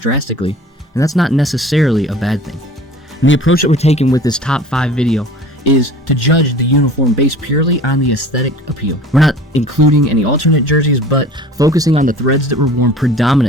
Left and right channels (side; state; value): both; normal; correlation 0.44